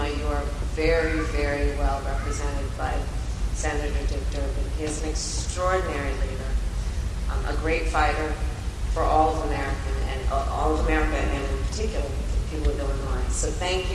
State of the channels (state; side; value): identical; both; correlation 1.00